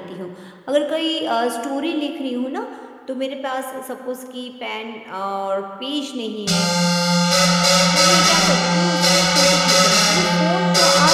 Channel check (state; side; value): identical; both; correlation 1.00